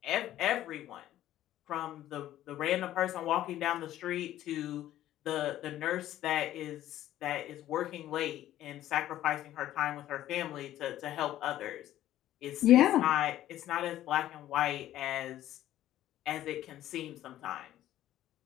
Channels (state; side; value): quieter; right; 13.2 dB